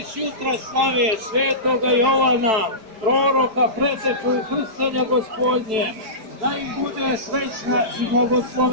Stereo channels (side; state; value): left; late; 4.6 ms